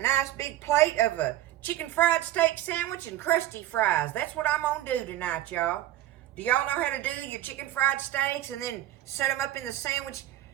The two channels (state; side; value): quieter; left; 13.7 dB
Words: big plate of a chicken fried steak sandwich and Crusty fries. That's what I'm going to do tonight, y'all. Do y'all know how to do your chicken fried steaks and then set them up in the sandwich?